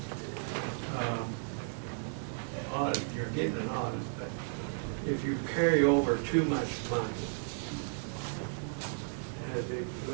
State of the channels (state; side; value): silent; left; 55 dB below the other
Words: Audit, you're getting an audit, but if you carry over too much money,